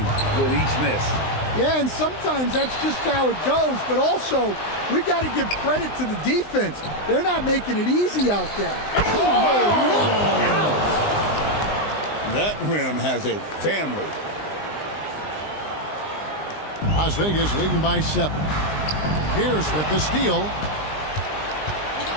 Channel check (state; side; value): late; right; 20 ms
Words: with each miss. Yeah, and sometimes that's just how it goes. But also, we got to give credit to the defense. They're not making it easy out there. That rim has a family. Las Vegas leading by 7. Pierce with the steal.